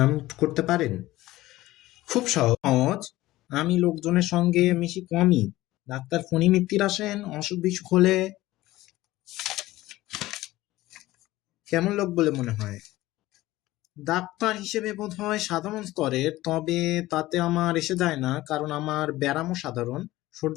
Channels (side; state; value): right; quieter; 17.1 dB